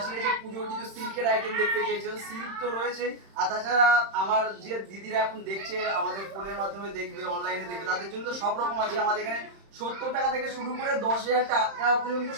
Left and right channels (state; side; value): late; left; 31 ms